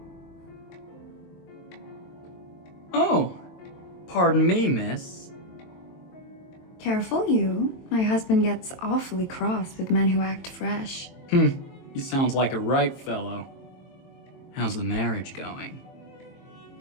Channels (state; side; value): late; right; 23 ms